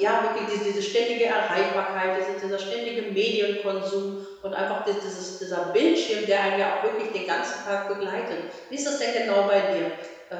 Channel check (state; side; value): identical; both; correlation 1.00